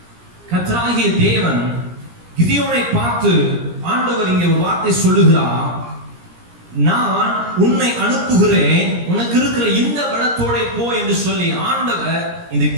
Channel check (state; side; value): late; left; 17 ms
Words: கர்த்தராகிய தேவன் கிதியோனை பார்த்து ஆண்டவர் இங்கே ஒரு வார்த்தை சொல்லுகிறார், நான் உன்னை அனுப்புகிறேன், உனக்கு இருக்கிற இந்த பலத்தோட போ என்று சொல்லி ஆண்டவர் இந்த